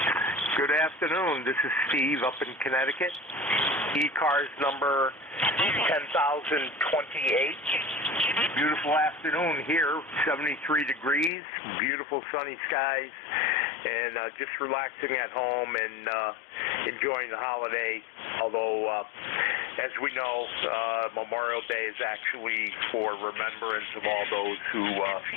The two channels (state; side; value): drops out; right; at 11.3 s